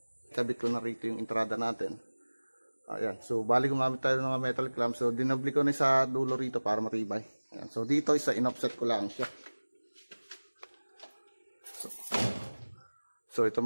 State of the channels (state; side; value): inverted; both; correlation -1.00